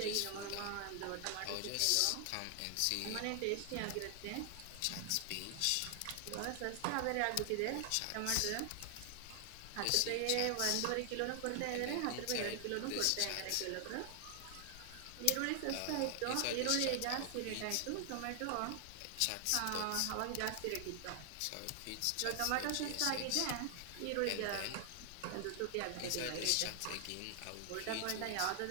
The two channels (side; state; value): both; different; correlation 0.00